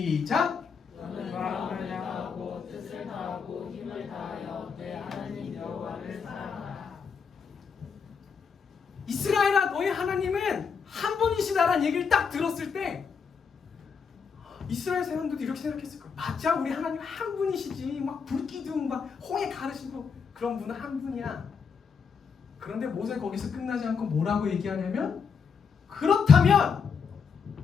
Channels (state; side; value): quieter; right; 6.0 dB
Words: 너는 마음을 다하고 뜻을 다하고 힘을 다하여 내 하나님 여호와를 사랑하라. 이스라엘아, 너의 하나님은 한 분이시다라는 얘기를 딱 들었을 때 이스라엘 사람들도 이렇게 생각했을 거예요. 맞아, 우리 하나님 한 분이시지. 막 불기둥 막 홍해 가르시고 그런 분은 한 분이야. 그런데 모세 거기서 끝나지 않고 뭐라고 얘기하냐면, 그렇다면